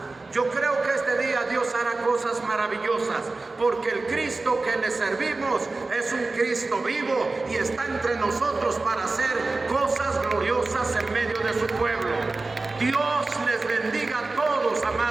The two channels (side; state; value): left; quieter; 3.5 dB